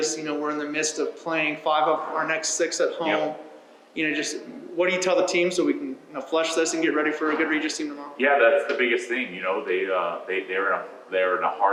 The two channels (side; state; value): both; identical; correlation 1.00